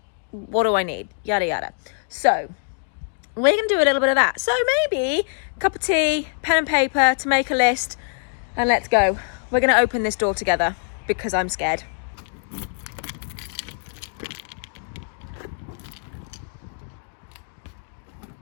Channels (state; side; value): silent; right; digital silence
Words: What do I need? Yada yada. So we're gonna do a little bit of that. So maybe a cup of tea, pen and paper to make a list, and let's go. We're gonna open this door together because I'm scared.